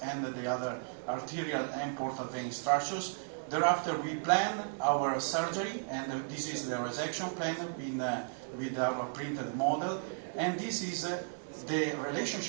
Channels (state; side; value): silent; left; digital silence